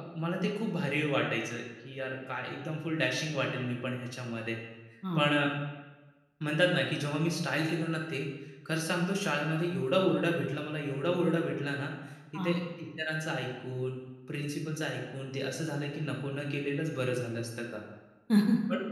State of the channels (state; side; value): identical; both; correlation 1.00